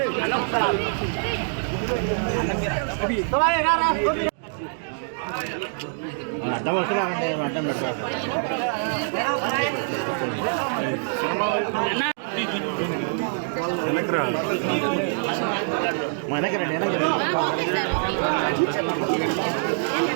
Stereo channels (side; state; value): left; silent; digital silence